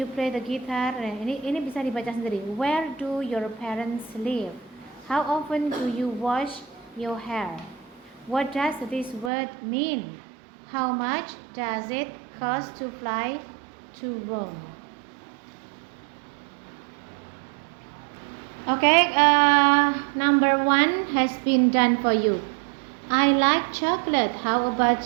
play the guitar? Ini bisa dibaca sendiri. Where do your parents live? How often do you wash your hair? What does this word mean? How much does it cost to fly to Rome? Okay, number 1 has been done for you. I like chocolate. How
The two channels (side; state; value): left; drops out; at 9.3 s